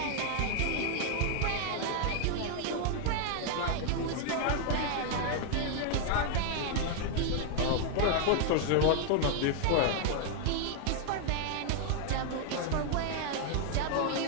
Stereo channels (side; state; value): both; different; correlation 0.00